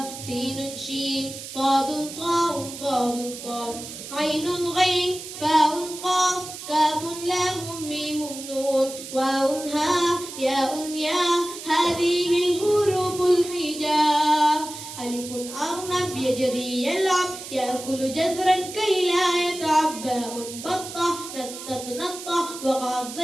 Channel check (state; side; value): noise; right; hiss, 11 dB below the sound